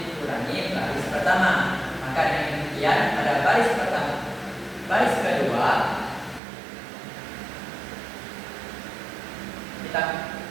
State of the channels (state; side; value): drops out; left; at 6.4 s